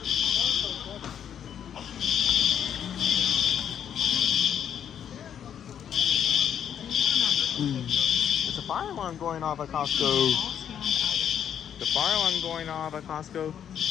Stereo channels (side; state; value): right; quieter; 9.0 dB